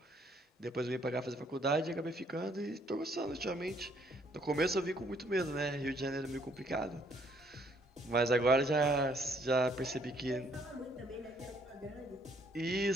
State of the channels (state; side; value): normal; both; correlation 0.66